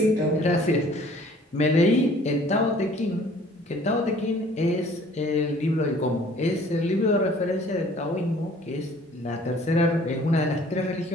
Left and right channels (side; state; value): both; normal; correlation 0.54